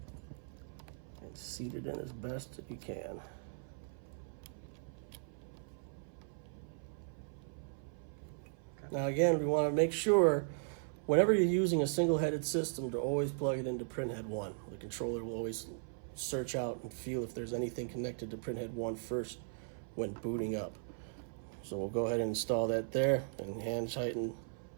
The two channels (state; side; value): silent; left; 53 dB below the other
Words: and seat it in as best you can. Now again, we want to make sure whenever you're using a single-headed system to always plug it into printhead 1. The controller will always search out and feel if there's anything connected to printhead 1 first when booting up. So we'll go ahead and install that there and hand tighten